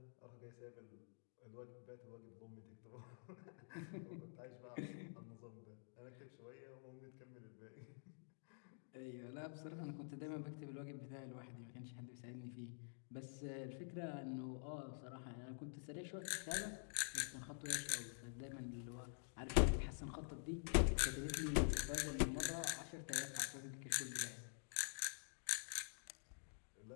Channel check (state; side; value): silent; right; digital silence